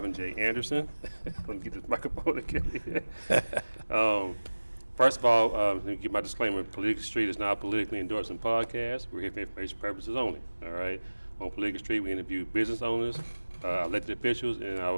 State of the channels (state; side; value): inverted; both; correlation -1.00